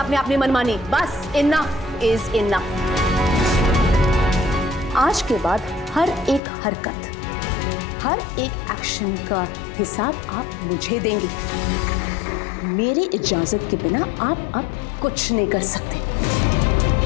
आपने अपनी मनमानी, बस इनफ इज इनफ। आज के बाद हर एक हरकत, हर एक एक्शन का हिसाब आप मुझे देंगे। मेरी इजाजत के बिना आप अब कुछ नहीं कर सकते,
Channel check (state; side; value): drops out; right; at 6.4 s